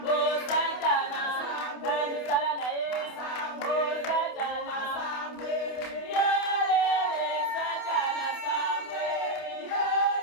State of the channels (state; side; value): late; right; 28 ms